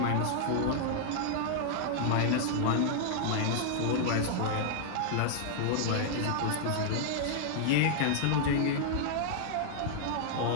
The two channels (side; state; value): both; different; correlation -0.01